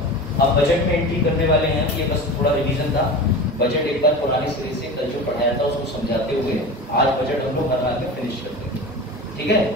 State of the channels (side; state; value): both; normal; correlation 0.31